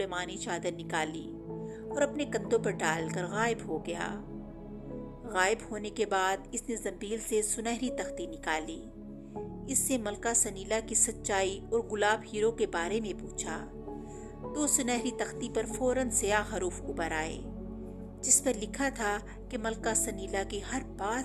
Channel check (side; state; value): both; identical; correlation 1.00